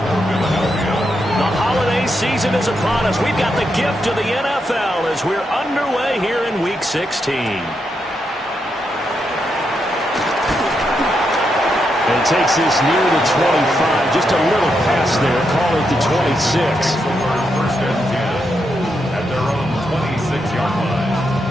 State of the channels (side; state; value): both; normal; correlation 0.82